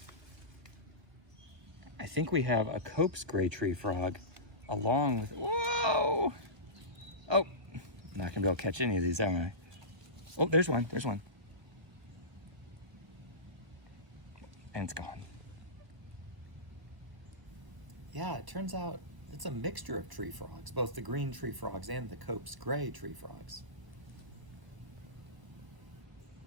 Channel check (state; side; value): late; left; 1.0 ms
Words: I think we have a Cope's gray tree frog along with, whoa! Oh, I'm not gonna be able to catch any of these, am I? Oh, there's one. And it's gone. Yeah, it turns out it's a mixture of tree frogs, both the green tree frogs and the Cope's gray tree frogs.